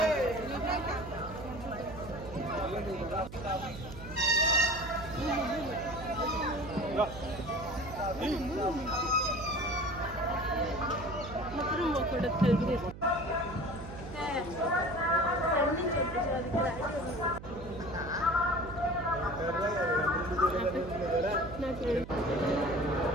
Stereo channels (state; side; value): noise; right; hum, 13 dB below the sound